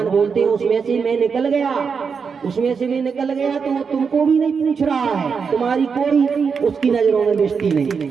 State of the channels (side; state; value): left; quieter; 5.8 dB